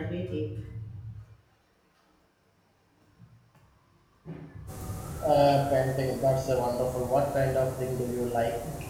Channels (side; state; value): both; identical; correlation 1.00